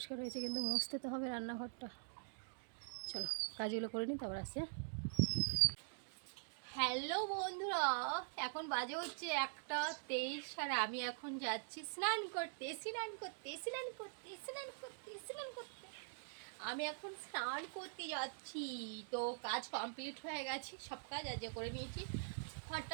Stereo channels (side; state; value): left; silent; digital silence